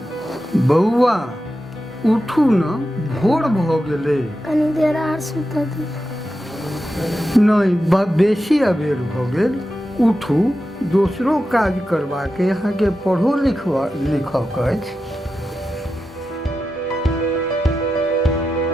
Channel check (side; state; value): both; normal; correlation 0.90